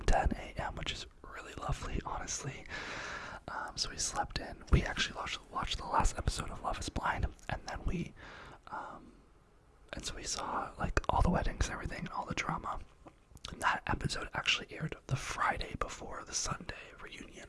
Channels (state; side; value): identical; both; correlation 1.00